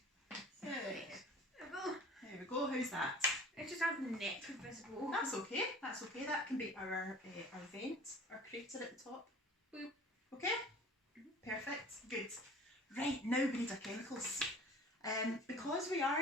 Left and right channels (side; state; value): both; normal; correlation 0.45